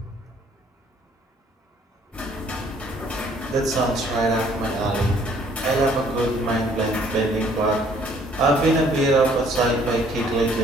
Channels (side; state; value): both; normal; correlation 0.61